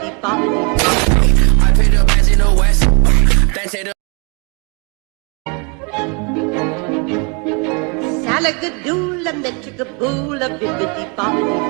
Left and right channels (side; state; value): left; quieter; 33.2 dB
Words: bop. I paid the bands in the west. Then say the Salagadool and the chickabool, a bibbidi bop.